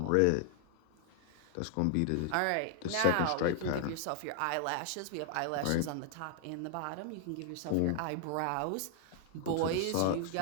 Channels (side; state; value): both; different; correlation 0.00